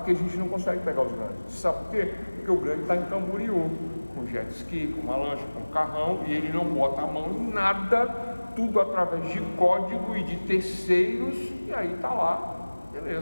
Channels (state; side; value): inverted; both; correlation -1.00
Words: a gente não consegue pegar os grandes. Sabe por quê? Porque o grande está em Camboriú, com jet ski, com uma lancha, com um carrão, e ele não bota a mão em nada, tudo através de código e de terceiros, e aí está lá,